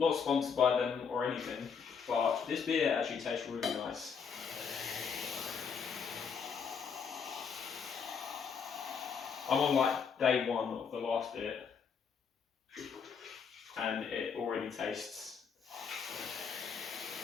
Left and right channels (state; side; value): quieter; right; 6.4 dB